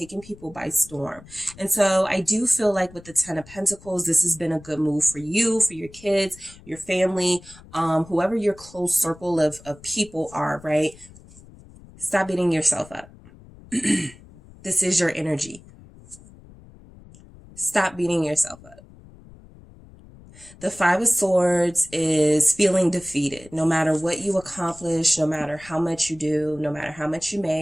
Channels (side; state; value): left; noise; rumble, 22 dB below the sound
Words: people by storm. And so I do feel like with the 10 of Pentacles, this has been a good move for you, for your kids, your family, whoever your close circle of people are, right? Stop beating yourself up. This is your energy. Stop beating yourself up. The 5 of Swords is feeling defeated. No matter what you accomplish, no matter how much you do, no matter how much you